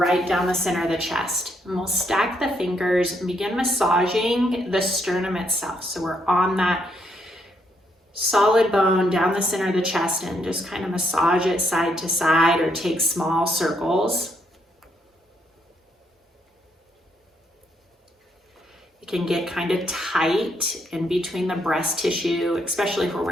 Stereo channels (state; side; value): normal; both; correlation 0.74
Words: down the center of the chest. And we'll stack the fingers and begin massaging the sternum itself. So we're on that solid bone down the center of the chest and just kind of massage it side to side or take small circles. It can get kind of tight in between the breast tissue, especially if we're